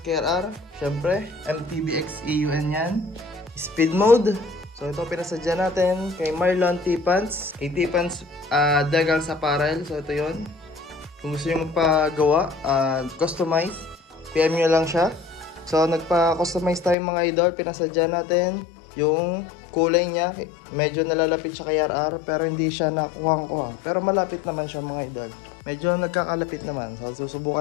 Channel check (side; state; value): right; drops out; at 16.9 s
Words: KRR. Syempre, MTBX EUN yan. Speed mode. So ito pinasadya natin kay Marlon T-Pants. Kay T-Pants Decals Apparel. So ito yon. Kung gusto nyo magpagawa, customize, PM nyo lang siya. So nagpa-customize tayo mga idol. Pinasadya natin yung kulay niya. Medyo nalalapit siya kay RR pero hindi siya nakuha-kuha. Pero malapit naman siya mga idol. Medyo nagkakalapit naman. So